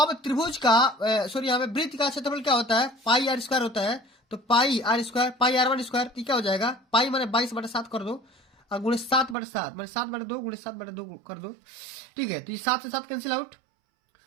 त्रिभुज का सॉरी यहाँ पे वृत्त का क्षेत्रफल क्या होता है, पाई आर स्क्वायर होता है। तो pi r square pi R1 square क्या हो जाएगा, पाई माने 22/7 कर दो और गुणे 7/7 मैंने 7/2 गुणे 7/2 कर दो, ठीक है। तो ये 7 से 7 कैंसिल आउट,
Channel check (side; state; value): left; drops out; at 9.3 s